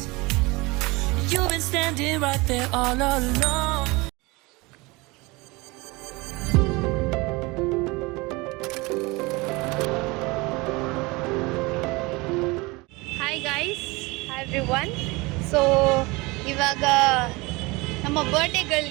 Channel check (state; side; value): quieter; left; 24.2 dB